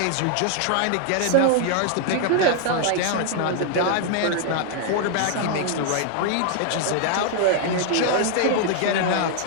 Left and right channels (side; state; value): both; different; correlation 0.00